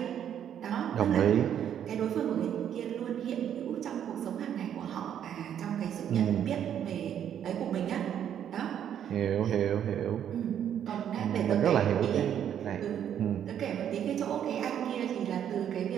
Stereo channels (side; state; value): left; quieter; 9.5 dB